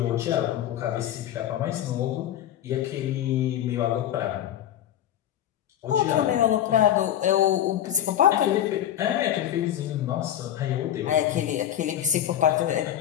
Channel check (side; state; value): right; quieter; 11.2 dB